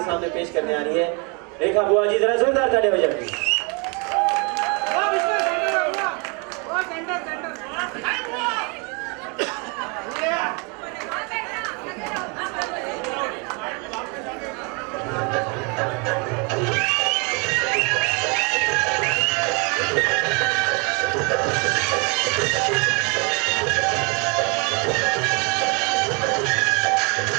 सामने पेश करने आ रही है रेखा बुआ जी। जरा जोरदार ताली हो जाए।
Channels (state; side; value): quieter; left; 32.9 dB